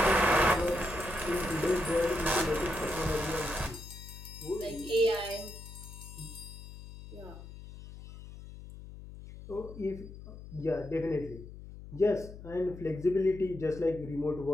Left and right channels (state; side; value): noise; left; hum, 14 dB below the sound